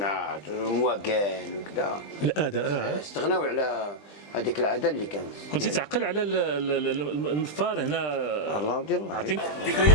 والمواقع وكذا الاداء استغناو على هذيك العاده اللي كانت. كنتي تعقل على النفار هنا. الله يدير الله. عطيني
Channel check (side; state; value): right; late; 20 ms